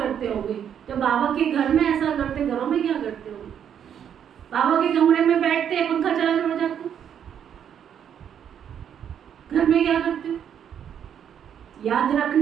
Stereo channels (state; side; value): quieter; left; 8.8 dB